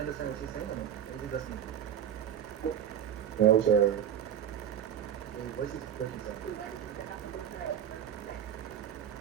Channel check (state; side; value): quieter; left; 9.5 dB